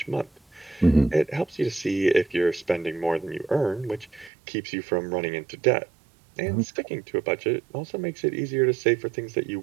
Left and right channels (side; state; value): left; drops out; at 4.3 s